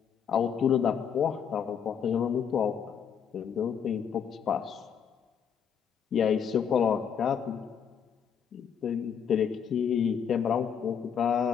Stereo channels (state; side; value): quieter; right; 7.7 dB